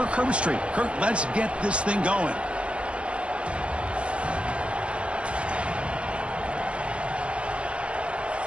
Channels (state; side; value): late; left; 0.059 ms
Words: Herbstreit. Kirk, let's get this thing going.